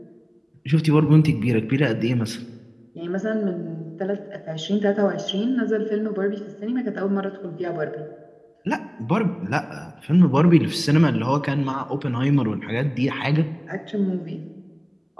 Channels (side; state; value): both; identical; correlation 1.00